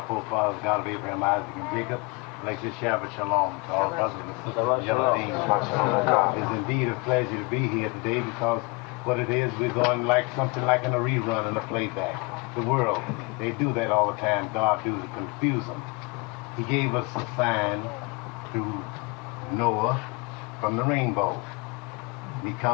forefathers, God of Abraham, Isaac, and Jacob, like this Shabbat Shalom to all brothers and sisters. It's indeed a pleasure to be here today because what it is, we're going like something like in a rerun and a playback. The world, they do that all the time. God do to confuse them. He gave us a sign through Noah from the rainbow. He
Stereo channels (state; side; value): quieter; right; 28.3 dB